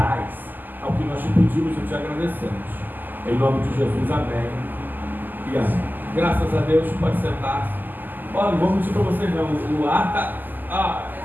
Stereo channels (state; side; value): late; left; 0.087 ms